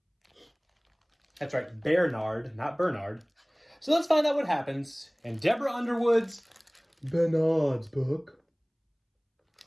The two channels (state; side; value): identical; both; correlation 1.00